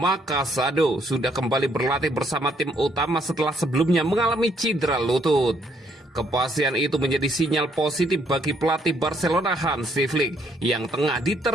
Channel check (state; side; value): normal; both; correlation 0.69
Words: Casado, sudah kembali berlatih bersama tim utama setelah sebelumnya mengalami cedera lutut. Kepastian itu menjadi sinyal positif bagi pelatih Barcelona Hansi Flick yang tengah